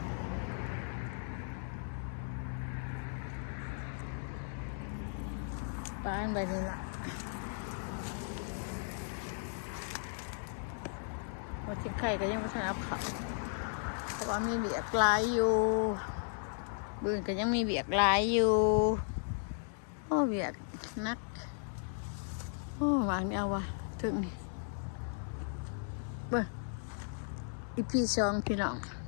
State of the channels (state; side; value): silent; right; 54 dB below the other